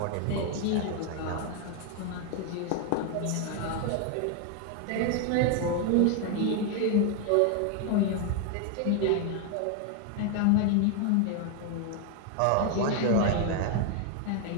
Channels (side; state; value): both; different; correlation 0.00